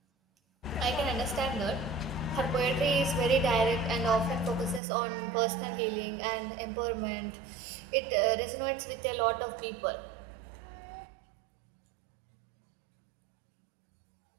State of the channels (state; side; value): drops out; left; at 4.8 s